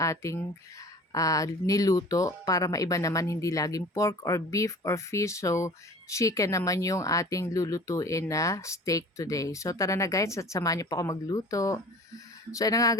niluto para maiba naman, hindi laging pork or beef or fish. So chicken naman yung ating lulutuin na steak today. So tara na guys at samahan niyo po ako magluto. So ayun na nga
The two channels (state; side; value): normal; both; correlation 0.43